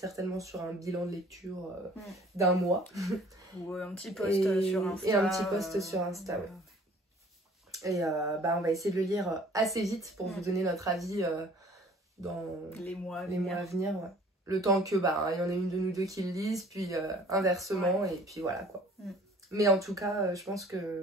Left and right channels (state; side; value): normal; both; correlation 0.52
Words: sur un bilan de lecture d'un mois. Ou un petit post sur Insta. Et un petit post sur Insta, ouais. Et on va essayer de le lire assez vite pour vous donner notre avis dans les mois à venir. Ouais. Le temps que il y en a une de nous deux qui le lisent, puis inversement, et puis voilà quoi. Mais en tout cas, je pense